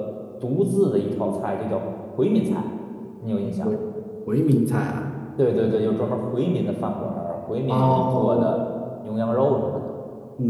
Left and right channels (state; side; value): identical; both; correlation 1.00